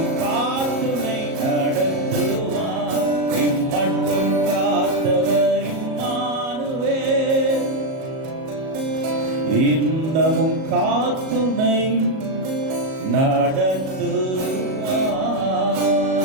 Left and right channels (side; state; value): left; late; 37 ms